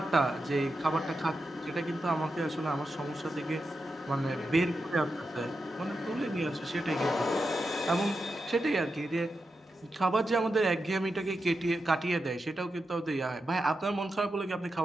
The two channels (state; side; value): normal; both; correlation 0.88